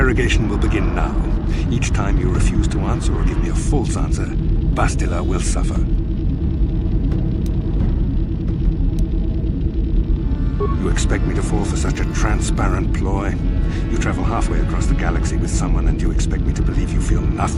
will begin now. Each time you refuse to answer or give me a false answer, Bastila will suffer. You expect me to fall for such a transparent ploy? You travel halfway across the galaxy with someone and you expect me to believe you feel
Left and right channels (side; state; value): both; identical; correlation 1.00